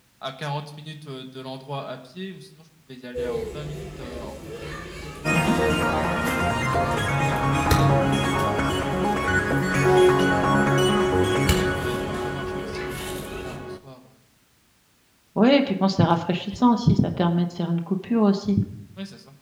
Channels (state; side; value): identical; both; correlation 1.00